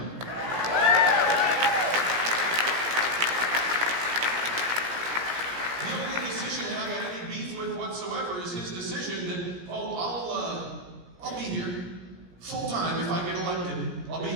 The only decision that I got any beef with whatsoever is his decision that, I'll be here full-time if I get elected. I'll be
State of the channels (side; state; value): left; late; 17 ms